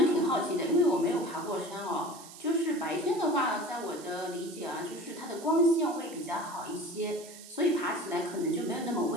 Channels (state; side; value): noise; right; hiss, 16 dB below the sound